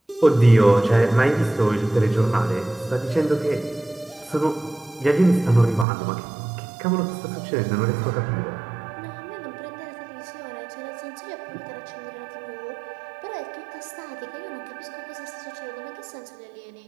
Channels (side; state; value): left; drops out; at 5.9 s